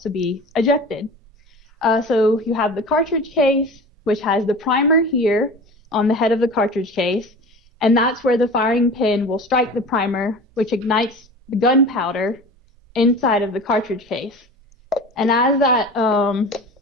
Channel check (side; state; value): both; normal; correlation 0.36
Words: be ejected. So you have the cartridge case, which has the primer here on the head of the cartridge case, and that's where the firing pin will strike the primer, which ignites the gunpowder inside of the cartridge case. And as that